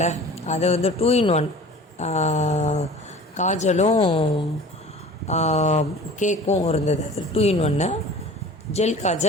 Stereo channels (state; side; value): normal; both; correlation 0.42